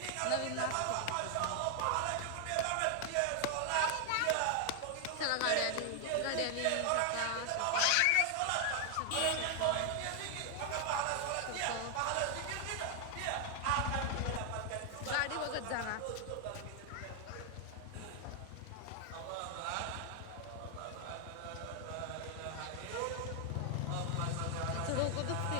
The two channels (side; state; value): both; different; correlation 0.00